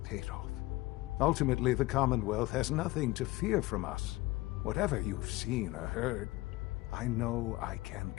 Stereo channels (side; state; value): right; quieter; 19.9 dB